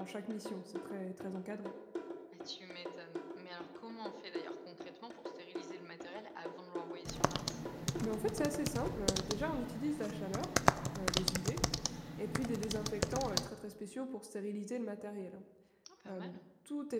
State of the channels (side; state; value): both; identical; correlation 1.00